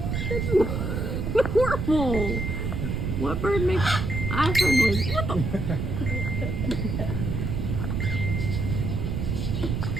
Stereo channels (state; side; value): noise; right; rumble, 1 dB below the sound